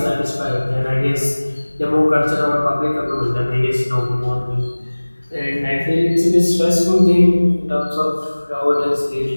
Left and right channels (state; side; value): inverted; both; correlation -1.00